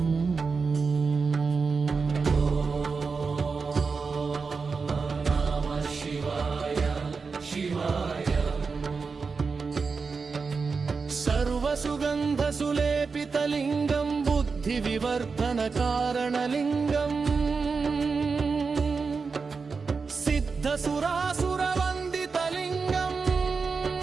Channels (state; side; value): quieter; left; 4.8 dB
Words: नमः शिवाय शिवाय सर्वसुगन्धसुलेपितलिङ्गं बुद्धिविवर्धनकारणलिङ्गम् सिद्धसुरासुरवन्दितलिङ्गम्